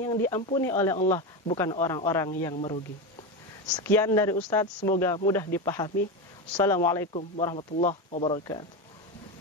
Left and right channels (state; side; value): normal; both; correlation 0.17